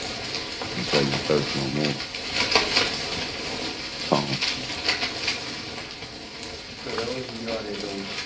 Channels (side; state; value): both; identical; correlation 1.00